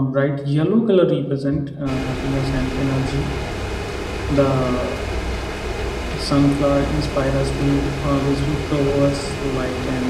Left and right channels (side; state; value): both; identical; correlation 1.00